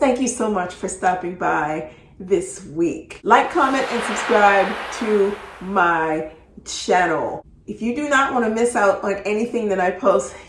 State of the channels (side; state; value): both; identical; correlation 1.00